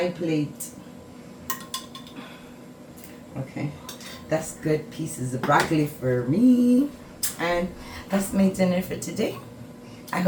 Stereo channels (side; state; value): both; identical; correlation 1.00